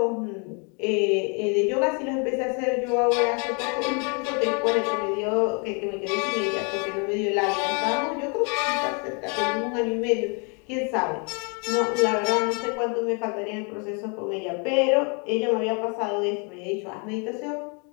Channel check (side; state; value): right; quieter; 35.7 dB